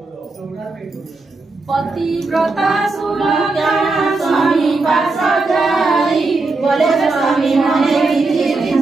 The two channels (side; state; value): left; quieter; 3.5 dB